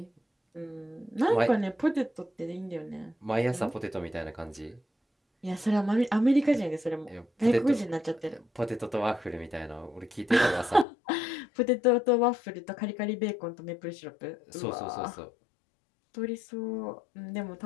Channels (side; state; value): right; drops out; at 10.9 s